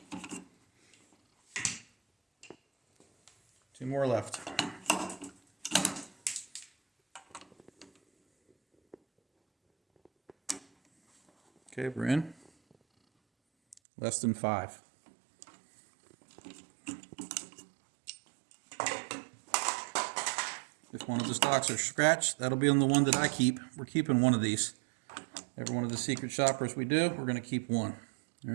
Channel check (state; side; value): drops out; left; at 13.8 s